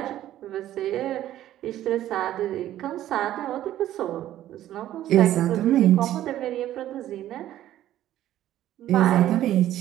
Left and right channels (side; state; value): left; quieter; 12.9 dB